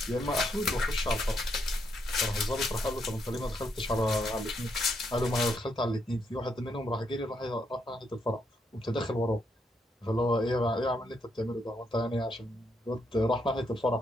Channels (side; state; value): both; normal; correlation 0.77